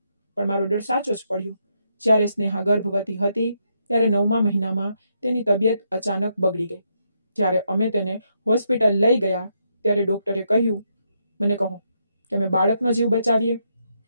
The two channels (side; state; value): both; inverted; correlation -0.78